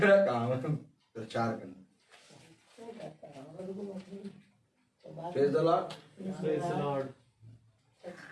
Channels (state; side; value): identical; both; correlation 1.00